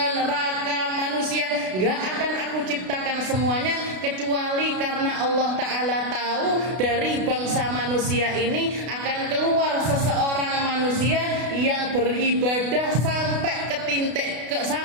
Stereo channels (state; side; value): late; left; 32 ms